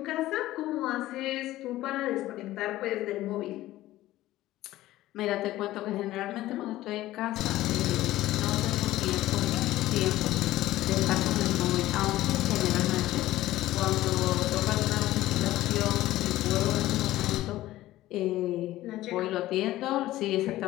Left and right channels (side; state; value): right; quieter; 15.7 dB